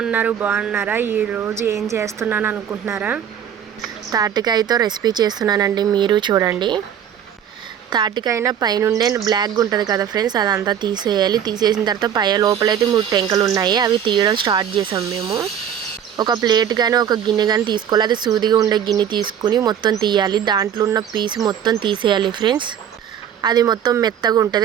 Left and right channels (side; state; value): left; quieter; 9.1 dB